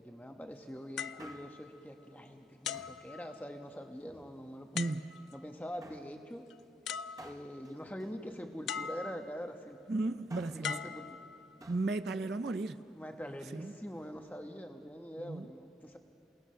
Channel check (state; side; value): normal; both; correlation 0.75